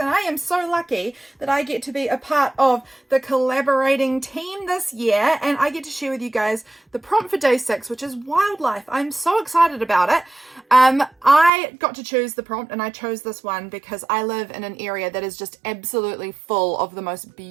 I am so lucky that I get to be a part of the collaborating team this year, and I get to share with you guys the prompt for day 6, which is wildlife. I'm so excited about it. I got to choose the prompt, and I chose this one because I live in an area that is just absolutely full of the most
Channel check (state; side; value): drops out; left; at 11.5 s